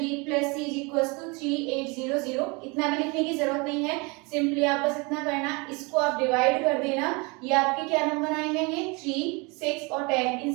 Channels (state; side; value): quieter; left; 28.7 dB